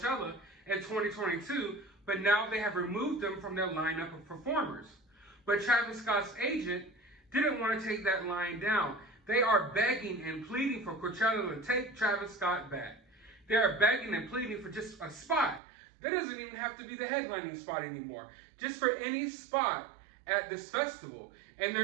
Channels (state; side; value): drops out; left; at 15.6 s